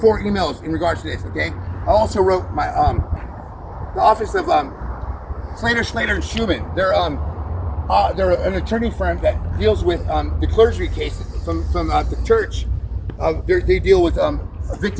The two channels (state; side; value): identical; both; correlation 1.00